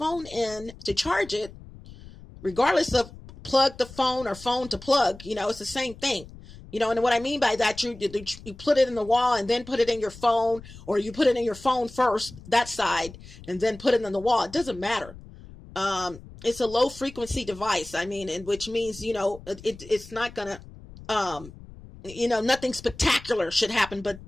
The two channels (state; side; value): noise; left; rumble, 18 dB below the sound